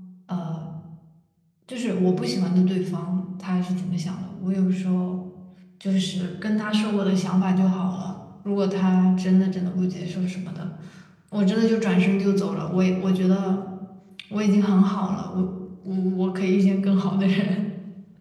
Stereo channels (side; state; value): both; identical; correlation 1.00